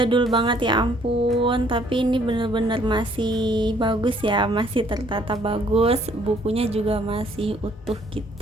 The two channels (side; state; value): both; normal; correlation 0.63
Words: banget ya ampun, tapi ini bener-bener masih bagus ya, masih tertata bagus, bukunya juga masih utuh